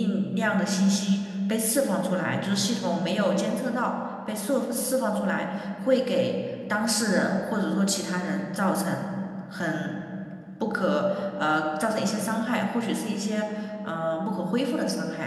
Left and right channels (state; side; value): identical; both; correlation 1.00